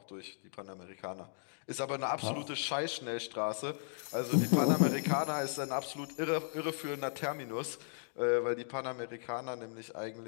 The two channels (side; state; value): right; silent; digital silence